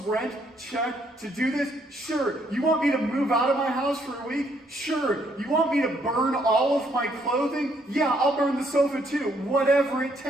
check to do this? Sure. You want me to move out of my house for a week? Sure. You want me to burn all of my clothing? Yeah, I'll burn the sofa too. Whatever it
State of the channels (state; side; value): normal; both; correlation 0.70